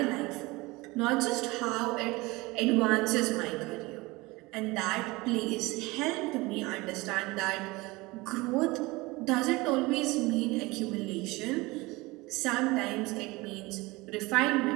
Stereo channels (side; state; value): left; quieter; 22.5 dB